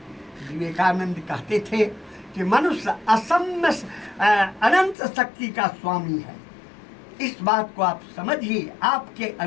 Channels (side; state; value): right; drops out; at 5.0 s